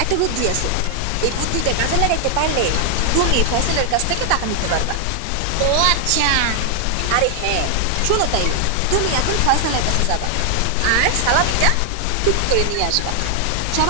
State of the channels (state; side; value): different; both; correlation 0.00